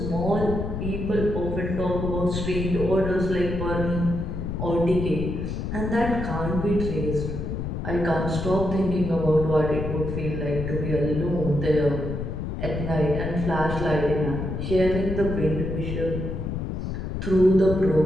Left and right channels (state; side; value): noise; left; rumble, 4 dB below the sound